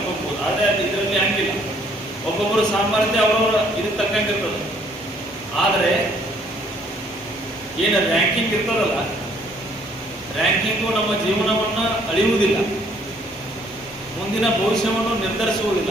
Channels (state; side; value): normal; both; correlation 0.63